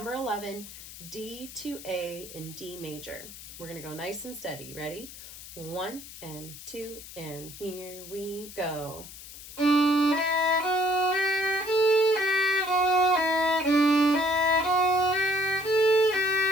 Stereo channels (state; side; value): noise; left; hiss, 15 dB below the sound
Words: 11, D to A in D major. We're going to go nice and steady. Ready? 1 and 2, and here we go.